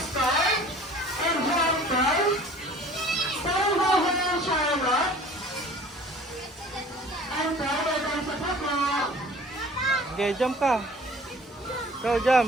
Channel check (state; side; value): normal; both; correlation 0.48